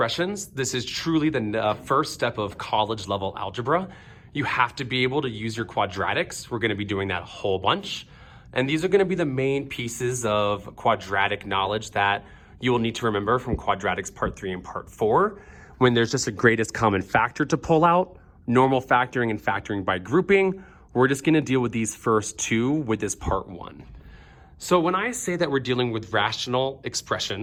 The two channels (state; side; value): identical; both; correlation 1.00